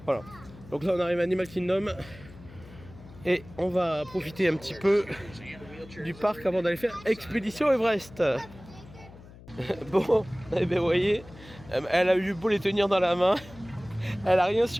voilà. Donc là on arrive à Animal Kingdom. Et on va profiter un petit peu du parc avant d'aller faire Expédition Everest. Bon, eh bien vous voyez, elle a eu beau les tenir dans la main. Elle a rien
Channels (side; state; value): left; noise; hum, 19 dB below the sound